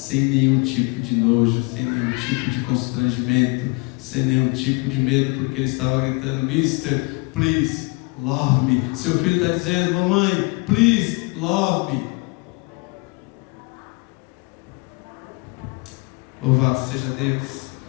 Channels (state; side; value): quieter; right; 30.2 dB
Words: nenhum tipo de nojo, sem nenhum tipo de constrangimento, sem nenhum tipo de medo, porque ele estava gritando: Mister, please love me. Seu filho está dizendo: mamãe, please love me. Louvado seja Deus,